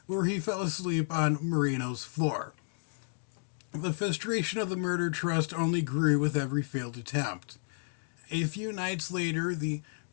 where he fell asleep on Marino's floor. The frustration of the Murder Trust only grew with every failed attempt. A few nights later, the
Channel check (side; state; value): right; silent; digital silence